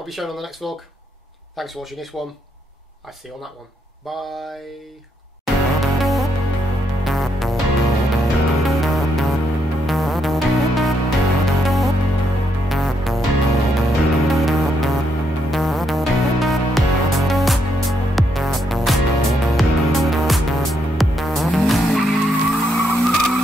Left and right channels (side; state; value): both; normal; correlation 0.77